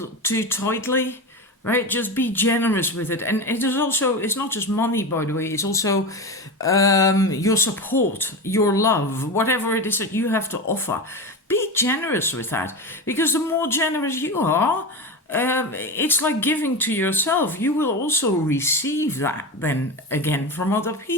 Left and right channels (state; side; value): normal; both; correlation 0.22